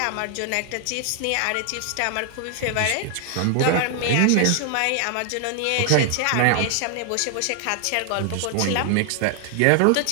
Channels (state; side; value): different; both; correlation 0.00